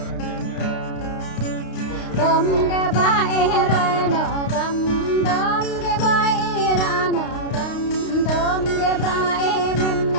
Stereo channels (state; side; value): late; right; 32 ms